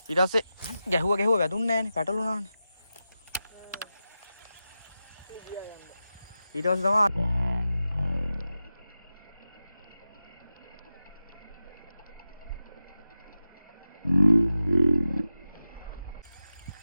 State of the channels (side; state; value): both; inverted; correlation -0.92